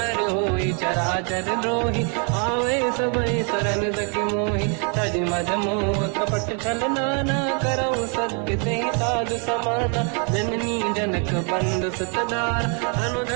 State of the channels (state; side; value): quieter; left; 38.8 dB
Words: होई चराचर द्रोही आवे सबई शरण सखी मोही तज मद मोह कपट छल नाना करऊ सत्य ते साधु समाना जननी जनक बंद सुतदार